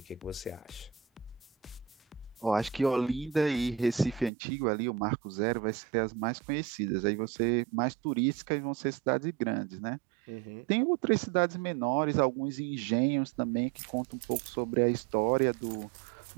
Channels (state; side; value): drops out; left; at 4.3 s